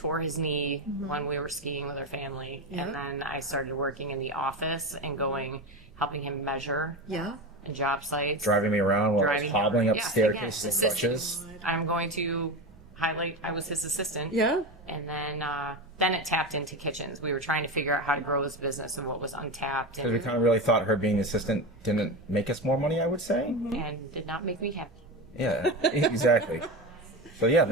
his knee when we were skiing with our family. Yeah. And then I started working in the office and helping him measure Yeah. in job sites. Driving me around while I was Driving hobbling him. up Yes, staircases and again, crutches. I'm going to highlight I was his assistant. Yeah. And then it tapped into kitchens. We were trying to figure out how to grow his business and what was untapped Because we and, kind of really thought her being the assistant didn't make us more money, I would say. and did not make me happy. Yeah, exactly. So yeah,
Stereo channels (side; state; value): both; normal; correlation 0.21